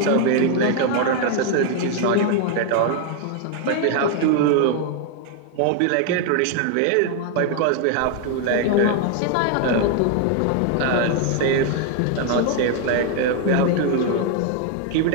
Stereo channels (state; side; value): different; both; correlation 0.00